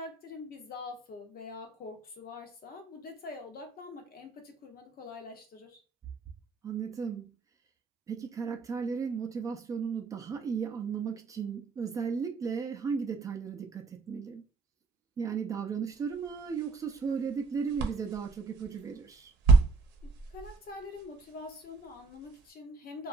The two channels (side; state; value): left; quieter; 4.4 dB